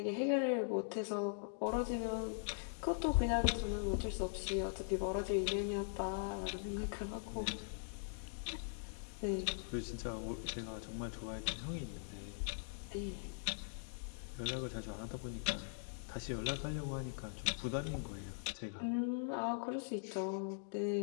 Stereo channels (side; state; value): right; silent; digital silence